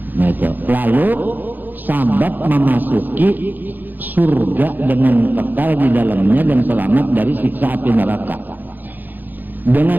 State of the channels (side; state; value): left; late; 0.087 ms